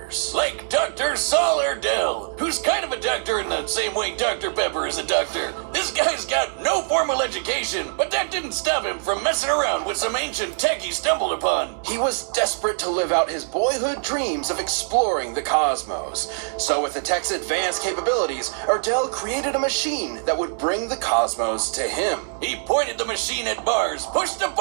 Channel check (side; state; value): left; silent; digital silence